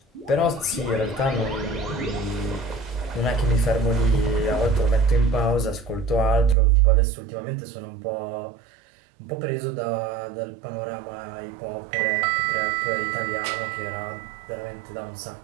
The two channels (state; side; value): drops out; left; at 6.6 s